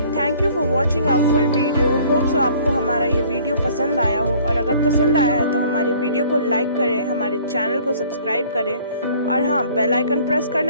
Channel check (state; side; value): inverted; both; correlation -0.54